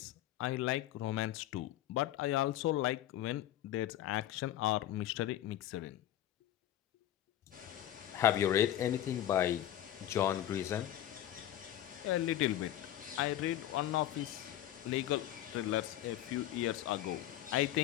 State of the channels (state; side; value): quieter; right; 12.5 dB